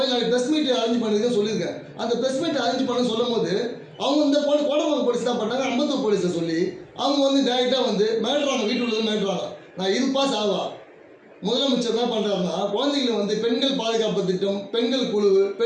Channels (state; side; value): identical; both; correlation 1.00